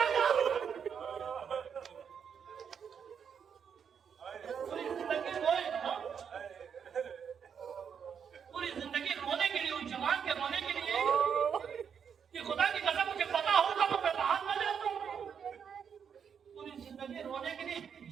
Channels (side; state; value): left; quieter; 7.3 dB